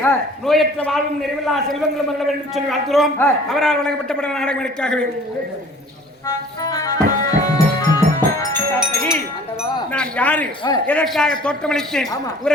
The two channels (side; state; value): both; normal; correlation 0.49